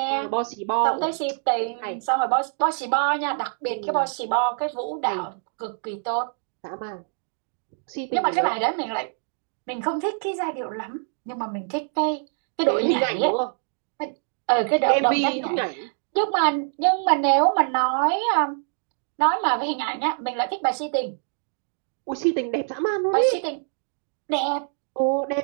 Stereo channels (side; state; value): left; silent; 62 dB below the other